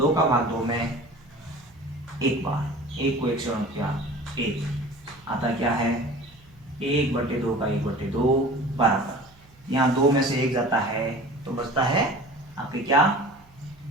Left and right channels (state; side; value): noise; right; hum, 28 dB below the sound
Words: का भाग 2 में 1 बार, 1 को 1 से गुणा किया 1, आता क्या है 1/2 का 1/2 बराबर, यहाँ 2 में से 1 जाता है तो बचता है आपके क्या